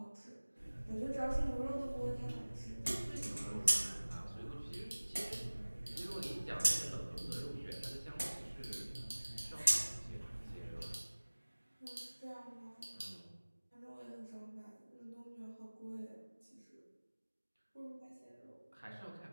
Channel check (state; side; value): inverted; both; correlation -1.00